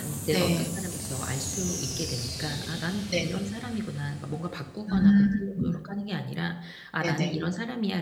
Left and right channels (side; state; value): both; identical; correlation 1.00